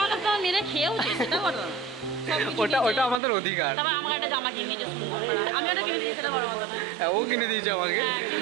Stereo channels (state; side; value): drops out; left; at 3.2 s